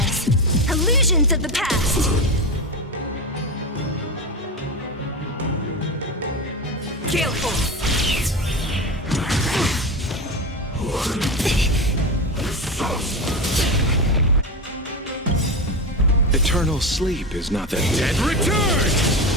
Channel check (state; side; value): normal; both; correlation 0.20